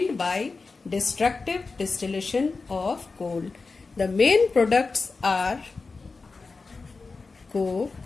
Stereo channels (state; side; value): quieter; right; 4.1 dB